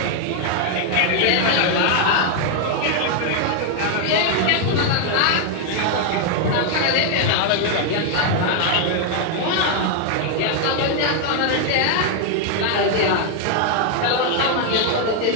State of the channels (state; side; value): different; both; correlation 0.00